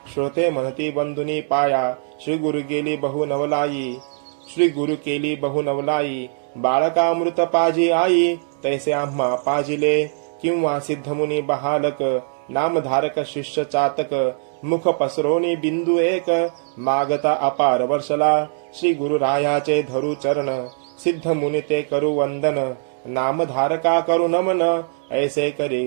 श्रोते म्हणती बंधुनी पाया. श्री गुरु गेली बहु नवलाई. श्री गुरु केली बहु नवलाई. बाळकामृत पाजी आई. तैसे आम्हा पाजिले. किंवा सिद्धमुनी बहालक. नामधारक शिष्य चातक. मुख पसरोनी बिंदू एक. मागता अपार वर्षला. श्री गुरुरायाचे धरू चरण. सिद्ध मुनी ते करू वंदन. नामधारका करू नमन. ऐसे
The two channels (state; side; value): silent; left; digital silence